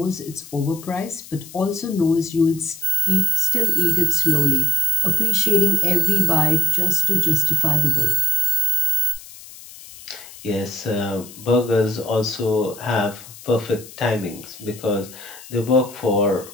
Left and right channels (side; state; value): left; noise; hiss, 17 dB below the sound